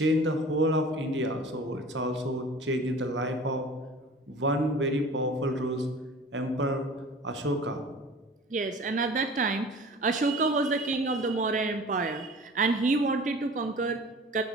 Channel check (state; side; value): normal; both; correlation 0.43